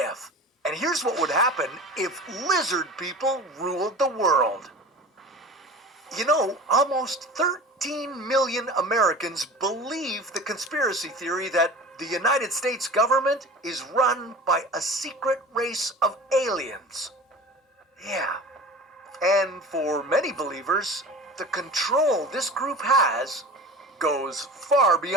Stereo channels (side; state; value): both; normal; correlation 0.37